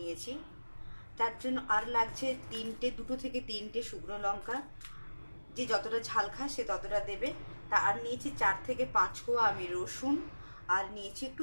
তার জন্য আর লাগছে দুটো থেকে তিনটে শুকনো লঙ্কা। যে যতটা ঝাল খায় সে ততটা দেবে। তা আর নিয়েছি 4 থেকে 5 কোয়া আমি রসুন, আর নিয়েছি একটু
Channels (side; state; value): both; inverted; correlation -1.00